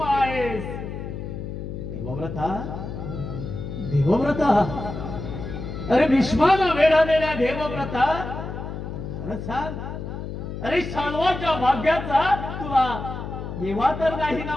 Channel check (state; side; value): noise; left; hum, 7 dB below the sound